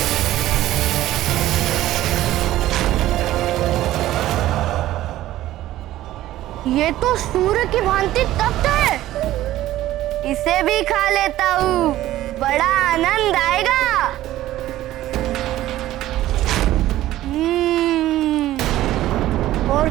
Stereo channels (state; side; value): quieter; left; 14.6 dB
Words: ये तो सूर्य की भांति तप्त है। इसे भी खा लेता हूँ, बड़ा आनंद आएगा। और